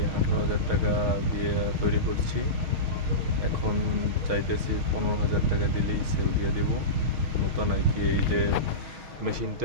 18,000 টাকা দিয়ে তৈরি করছি। এখন চাইতেছি 15,000 টাকা দিলেই সেল দিয়ে দেবো। নতুন আর কি, এই যে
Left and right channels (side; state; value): left; late; 6.3 ms